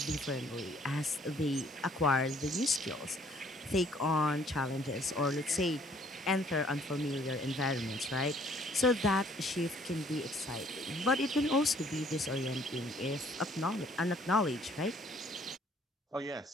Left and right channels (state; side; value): normal; both; correlation 0.61